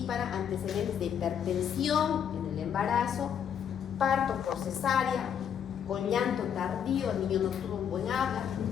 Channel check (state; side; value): quieter; right; 8.4 dB